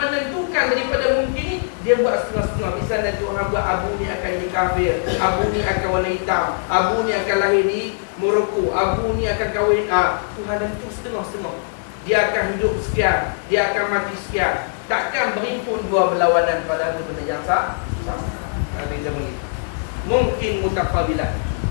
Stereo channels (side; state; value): right; silent; digital silence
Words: daripada mungkin ni, dia buat setengah-setengah. Misalnya Tuhan buat Abu ni akan jadi kafir, Abu ni akan warna hitam, Abu ni akan lahir di Morocco, Abu ni akan kahwin. Tuhan tentu setengah-setengah. Dia akan hidup sekian, dia akan mati sekian. Takkan berimpun dua berlawanan pada satu benda yang sama. Nanti kita bagi mungkin mutaqabilah.